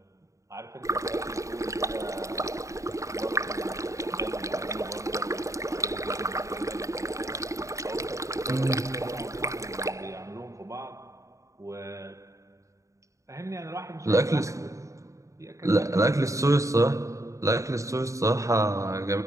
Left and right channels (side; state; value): left; late; 0.15 ms